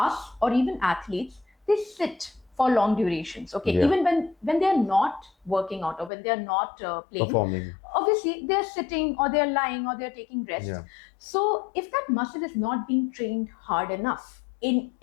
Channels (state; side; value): drops out; right; at 6.1 s